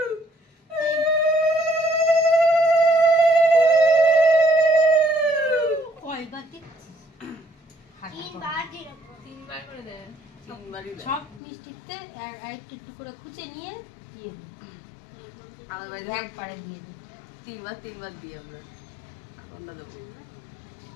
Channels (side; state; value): right; drops out; at 11.4 s